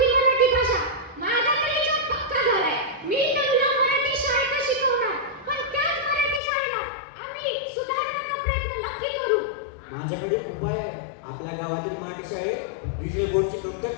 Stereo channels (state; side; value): drops out; right; at 6.4 s